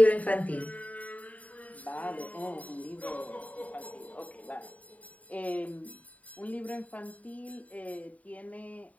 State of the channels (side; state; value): right; late; 0.070 ms